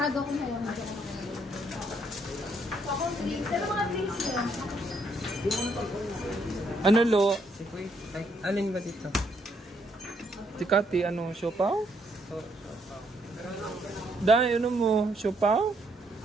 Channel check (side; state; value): both; normal; correlation 0.72